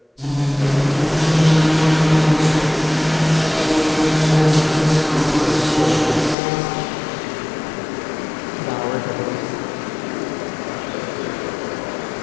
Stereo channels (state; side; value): drops out; right; at 6.4 s